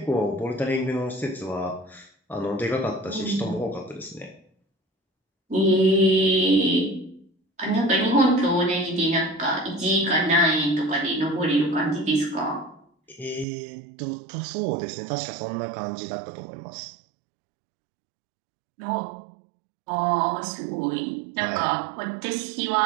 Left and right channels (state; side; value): drops out; left; at 13.5 s